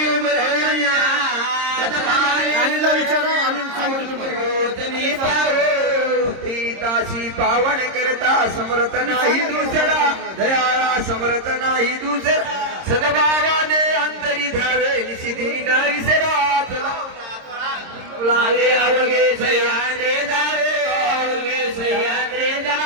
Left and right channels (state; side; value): late; left; 26 ms